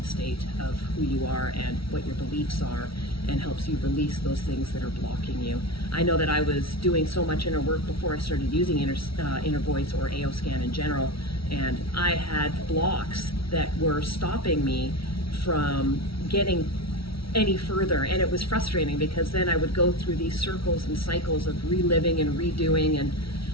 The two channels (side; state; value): right; late; 0.75 ms